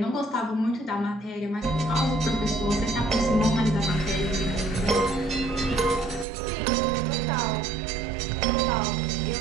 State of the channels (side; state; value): left; drops out; at 6.2 s